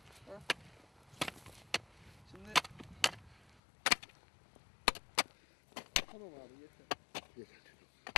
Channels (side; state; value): right; drops out; at 3.6 s